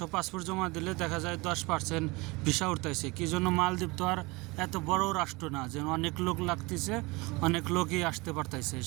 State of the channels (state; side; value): quieter; left; 24.6 dB